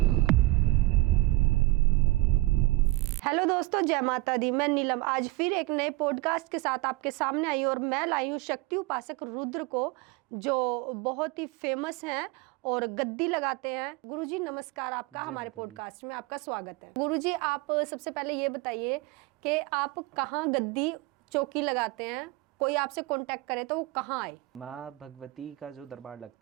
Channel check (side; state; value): left; quieter; 21.0 dB